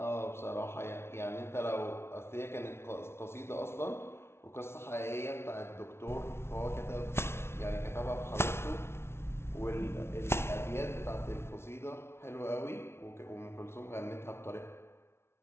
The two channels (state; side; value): late; right; 0.12 ms